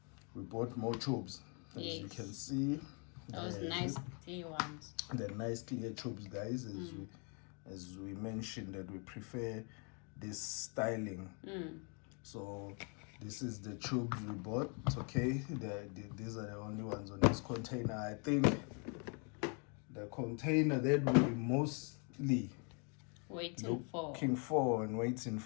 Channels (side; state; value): right; quieter; 36.6 dB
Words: we bought more tubes, as you can see. Those nice clear ones. The nice clear tubes, guys, as we mentioned that we prefer this styling. So this is the tubes we bought. Okay, these are the only ones on this container. I think the container that we mostly waiting